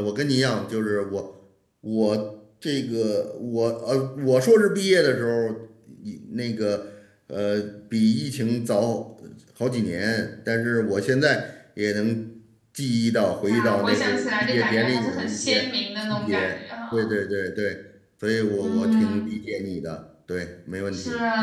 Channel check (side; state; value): both; identical; correlation 1.00